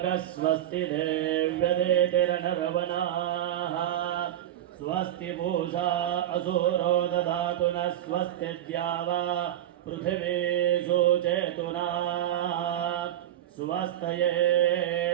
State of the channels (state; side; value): quieter; left; 12.1 dB